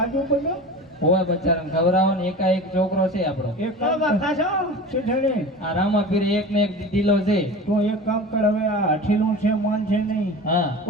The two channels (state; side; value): normal; both; correlation 0.34